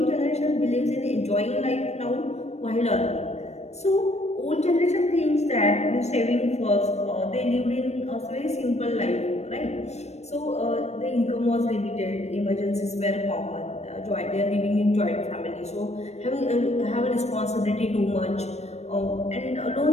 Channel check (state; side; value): late; right; 0.32 ms